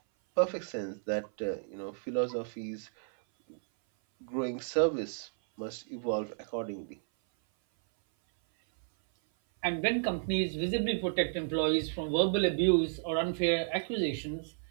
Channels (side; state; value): left; silent; 56 dB below the other